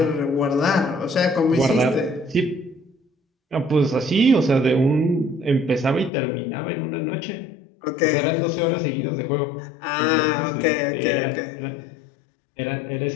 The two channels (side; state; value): right; drops out; at 6.1 s